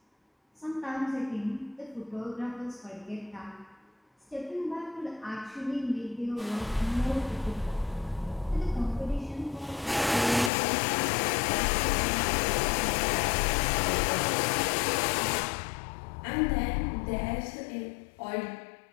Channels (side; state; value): right; drops out; at 10.5 s